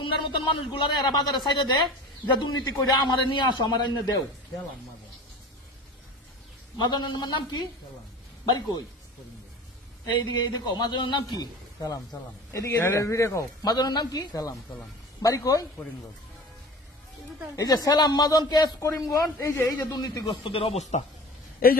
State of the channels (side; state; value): both; normal; correlation 0.38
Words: তোমার মতন মানুষগুলারে এরা বাজারে সাইডে দেয় যে দুর্নীতি করে আমারে নিয়ে আসো আমার এনে দেও মাজনের নাম কি বাড়ি কই এইদিকে দেখো মাজনের নাম কি সালাম এদিকে মাজনের নাম কি সালাম বাড়ি কই করিমগঞ্জ এই যে সালাম মাজন কেস করিমগঞ্জ এই যে দুর্নীতিগ্রস্তদের